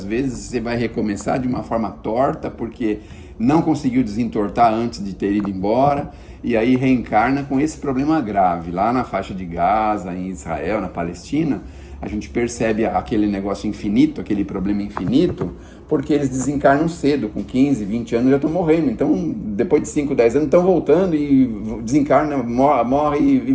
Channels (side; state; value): both; identical; correlation 1.00